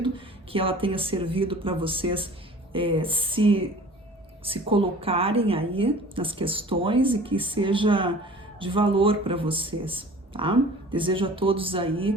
que ela tenha servido para vocês se se colocarem aí nas questões e que seja de valor para vocês, tá? Desejo a todos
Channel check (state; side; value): normal; both; correlation 0.45